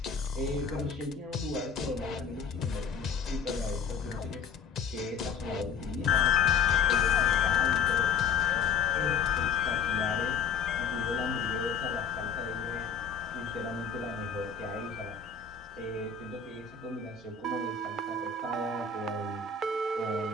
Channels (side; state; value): right; quieter; 5.8 dB